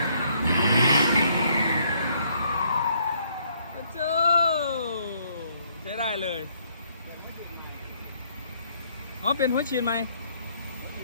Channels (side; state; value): both; inverted; correlation -0.68